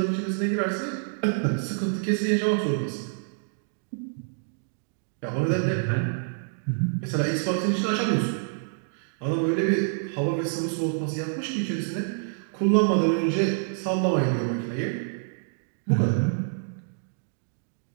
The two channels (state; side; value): silent; left; digital silence